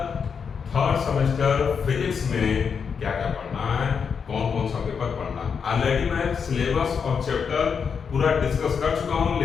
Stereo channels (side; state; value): right; quieter; 6.3 dB